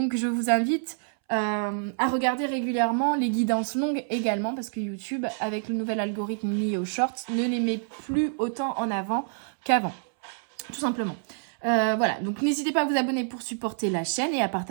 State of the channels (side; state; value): left; silent; 60 dB below the other